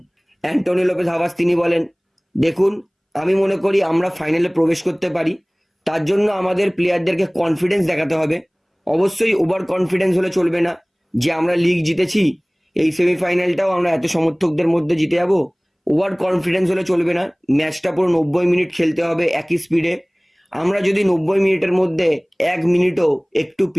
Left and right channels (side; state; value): both; identical; correlation 1.00